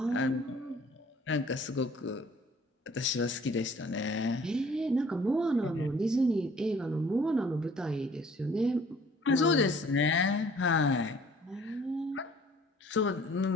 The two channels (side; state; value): both; normal; correlation 0.55